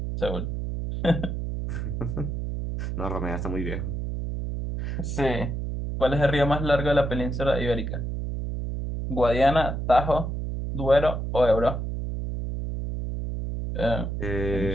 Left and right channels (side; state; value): right; noise; hum, 3 dB below the sound